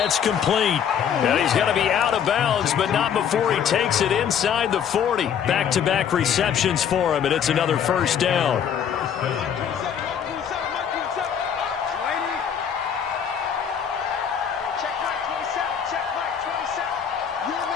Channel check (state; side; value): quieter; right; 8.2 dB